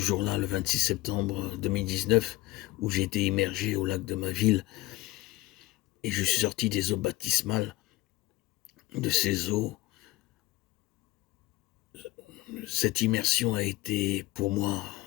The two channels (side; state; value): right; quieter; 18.1 dB